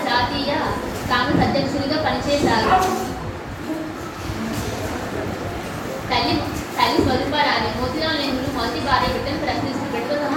జాతీయ కాంగ్రెస్ అధ్యక్షుడిగా పనిచేశారు. తల్లి స్వరూపారాణి. మోతీలాల్ నెహ్రూ మొదటి భార్య బిడ్డను ప్రశ్నిస్తూ బిడ్డతో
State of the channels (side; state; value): both; identical; correlation 1.00